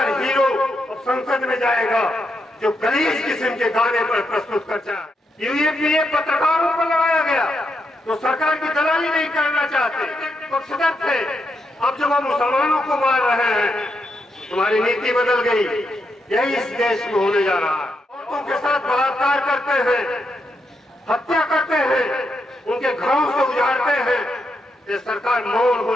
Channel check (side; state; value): both; normal; correlation 0.82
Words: हीरो अब संसद में जाएगा जो गलीज किस्म के गाने पर प्रस्तुत करता है। यूएपीए पत्रकारों पर लगाया गया तो सरकार की दलाली नहीं करना चाहते, पक्षधर थे। अब जब हम मुसलमानों को मार रहे हैं, तुम्हारी नीति बदल गई। यही इस देश में होने जा रहा है। औरतों के साथ बलात्कार करते हैं, हत्या करते हैं, उनके घरों से उजाड़ते हैं। ये सरकार मौन हो